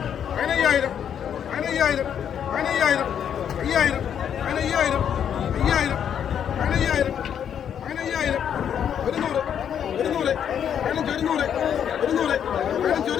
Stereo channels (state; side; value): quieter; right; 8.8 dB